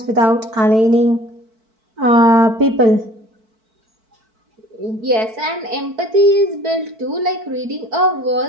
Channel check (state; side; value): late; left; 4.5 ms